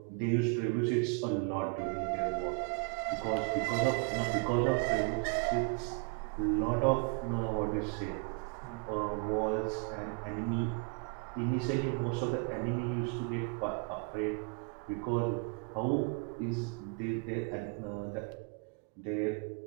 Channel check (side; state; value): left; quieter; 34.6 dB